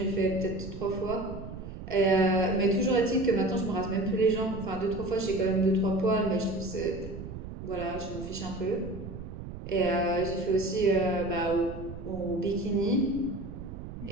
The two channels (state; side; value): noise; right; rumble, 10 dB below the sound